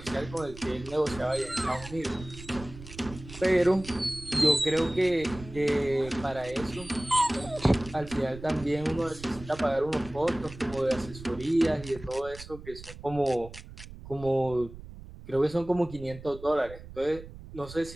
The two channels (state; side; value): noise; right; rumble, 15 dB below the sound